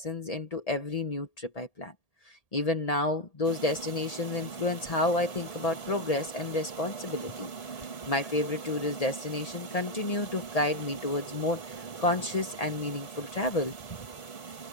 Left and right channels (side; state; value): right; late; 1.8 ms